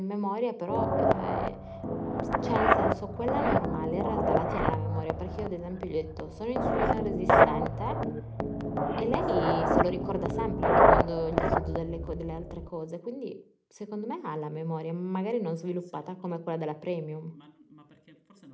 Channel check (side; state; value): both; identical; correlation 1.00